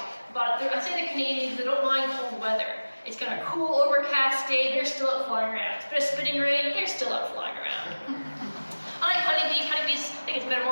but I'd say they're Canadian because they don't mind cold weather. It's kind of cool, overcast day, they're still out flying around. It's a bit of spitting rain, they're still out flying around. Unlike honeybees, I think it's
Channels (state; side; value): inverted; both; correlation -1.00